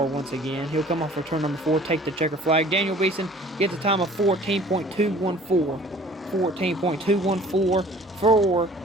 once again. He'll come off for turn number 4, take the checker flag. Daniel Beeson gets a time of 14.214. 14.214 for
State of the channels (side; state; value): both; normal; correlation 0.50